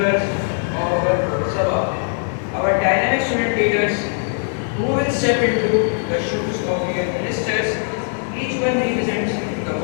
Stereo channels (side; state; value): right; silent; 66 dB below the other